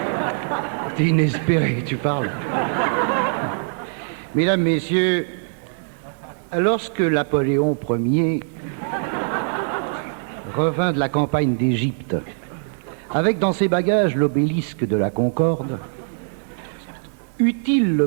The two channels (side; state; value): left; silent; digital silence